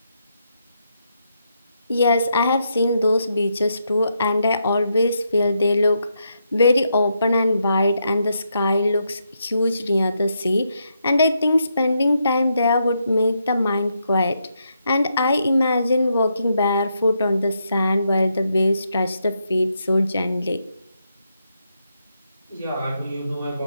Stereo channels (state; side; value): inverted; both; correlation -0.80